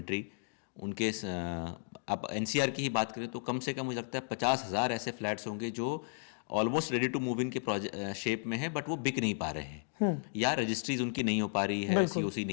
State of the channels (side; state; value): right; silent; digital silence